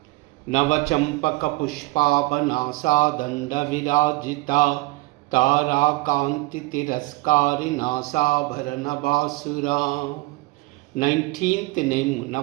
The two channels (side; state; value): left; quieter; 21.8 dB